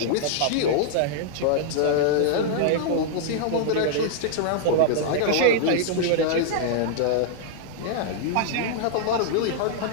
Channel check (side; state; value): both; different; correlation -0.01